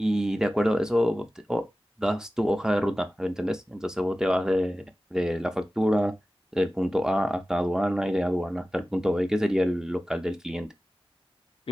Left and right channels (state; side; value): normal; both; correlation 0.96